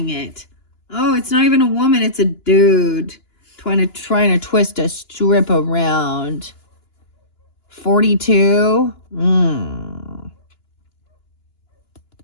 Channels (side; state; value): right; late; 2.9 ms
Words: it. Oh, it's not even a woman, it's a dude. Trying to twist a strip around. 42.